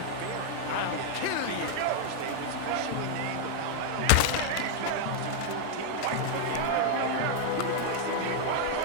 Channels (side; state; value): both; different; correlation 0.00